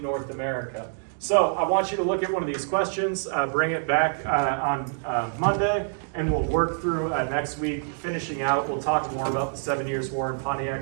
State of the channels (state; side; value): silent; left; digital silence